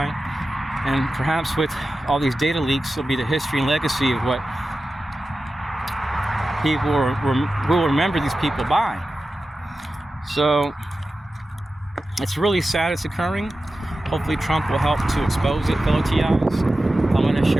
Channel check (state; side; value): normal; both; correlation 0.93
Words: And perhaps with all these data leaks, will be the history and legacy of what people will remember these people by. So it's really sad it's occurring. Hopefully Trump will help to expose it, fellow TIs. I'm going to